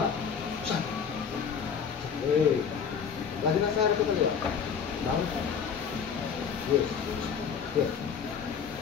Shot. Okay. Lagi nasa harap ka kaliwa. Down. Yes. Yes.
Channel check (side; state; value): right; quieter; 6.9 dB